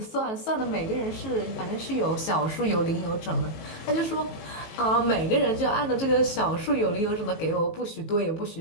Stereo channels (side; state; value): right; late; 18 ms